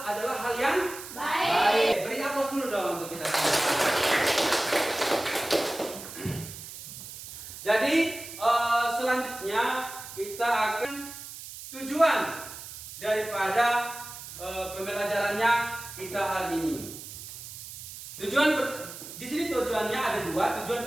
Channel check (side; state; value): right; noise; hiss, 12 dB below the sound